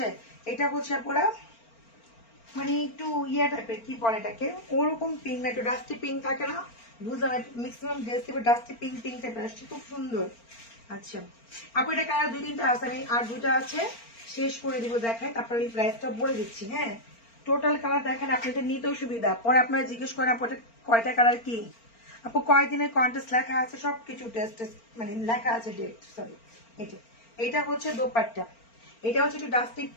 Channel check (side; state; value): right; late; 4.4 ms